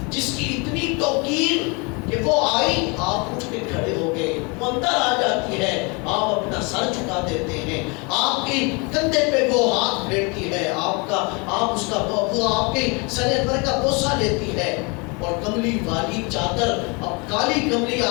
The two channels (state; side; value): quieter; right; 30.2 dB